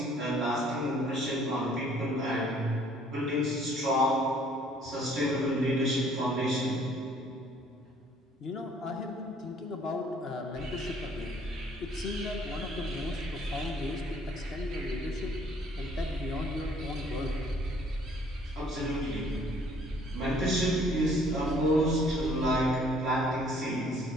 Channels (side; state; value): both; normal; correlation 0.60